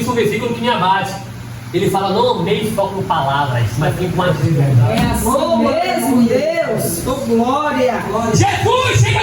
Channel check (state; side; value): identical; both; correlation 1.00